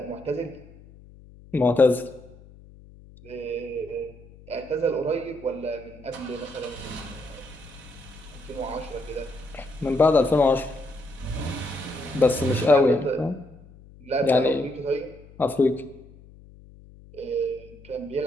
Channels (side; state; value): left; noise; hum, 22 dB below the sound